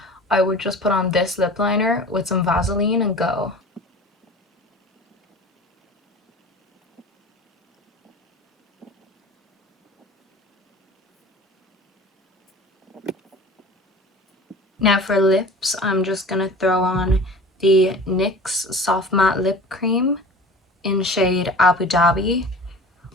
I would just put on this lip liner with some Vaseline and go. Now for lips, I'm just gonna throw on the NYX Soft Matte Lip Cream in shade Abu Dhabi.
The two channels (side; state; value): both; normal; correlation 0.40